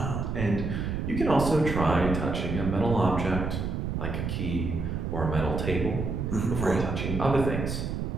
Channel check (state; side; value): noise; right; rumble, 3 dB below the sound